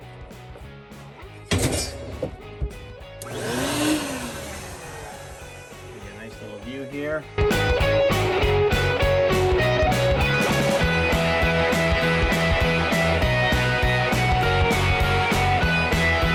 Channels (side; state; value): both; identical; correlation 1.00